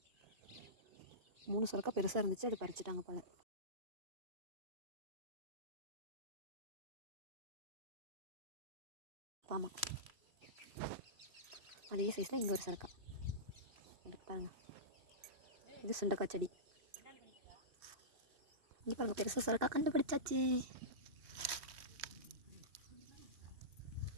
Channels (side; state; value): left; late; 2.6 ms